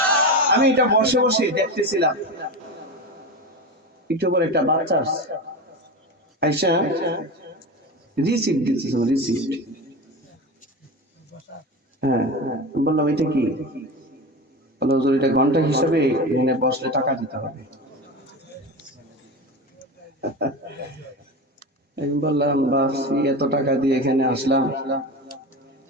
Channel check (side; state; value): both; normal; correlation 0.25